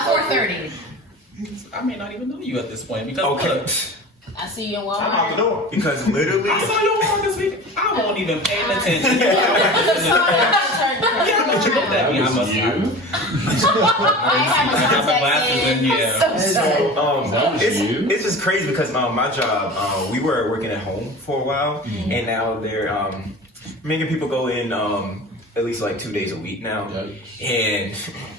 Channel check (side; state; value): both; normal; correlation 0.35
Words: 4:30. I may not even know you at this point because I see you in Walmart. I'm out the door. Because literally, I saw you on this week. I won't even pay attention. Yeah, but you looked at me. I must I got my glasses in. Yeah. it's just crazy because my job, we were working at home for a while, and now they're making people go in at least like 2 days a week now, and